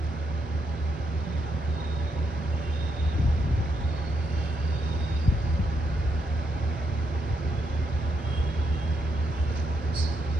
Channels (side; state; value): both; normal; correlation 0.79